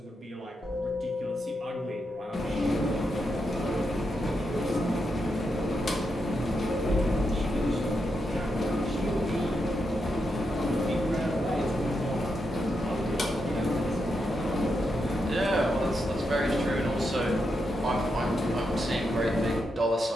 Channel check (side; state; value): both; normal; correlation 0.84